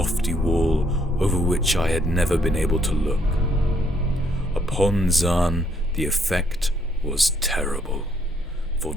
wall over which I had never been able to look. Upon Zann the effect was terrible, for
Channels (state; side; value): normal; both; correlation 0.70